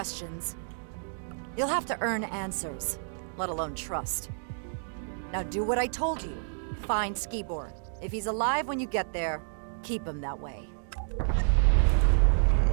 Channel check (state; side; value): silent; left; digital silence